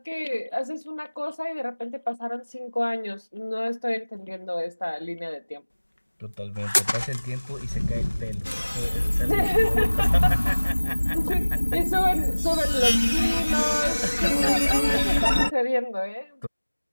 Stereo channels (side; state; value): both; inverted; correlation -1.00